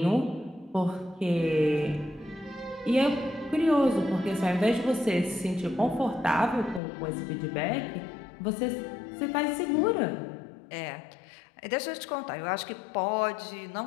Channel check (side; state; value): right; drops out; at 6.8 s